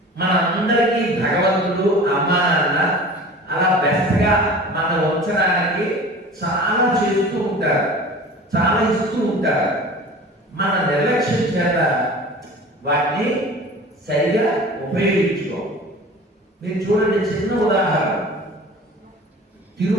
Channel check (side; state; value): both; normal; correlation 0.40